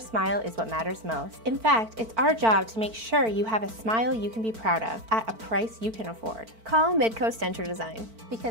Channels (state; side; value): late; left; 4.5 ms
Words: is what matters most. In fact, it's our job to make sure you have a smile you can be proud of at a price you can afford. Call Midcoast Denture Design.